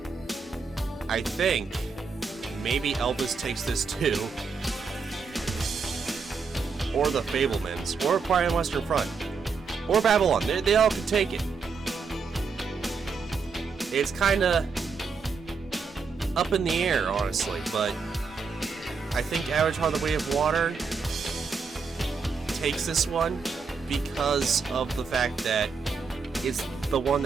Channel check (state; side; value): quieter; left; 5.1 dB